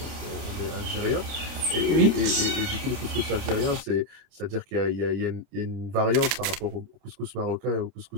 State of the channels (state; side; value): late; left; 30 ms